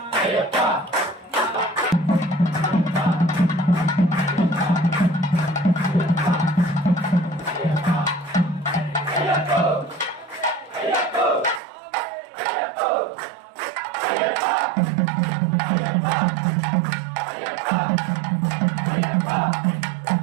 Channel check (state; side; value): drops out; left; at 11.6 s